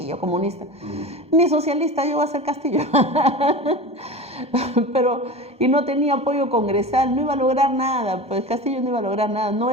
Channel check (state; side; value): late; left; 1.2 ms